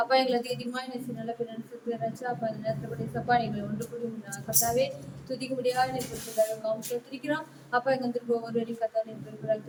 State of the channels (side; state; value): both; identical; correlation 1.00